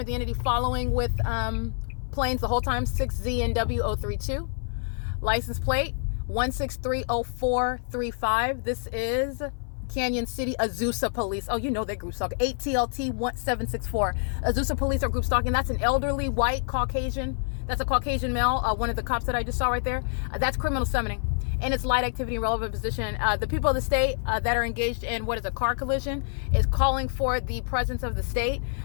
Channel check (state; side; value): silent; right; 55 dB below the other